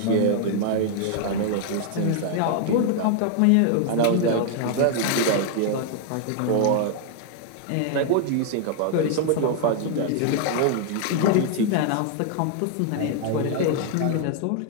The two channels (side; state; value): both; different; correlation 0.00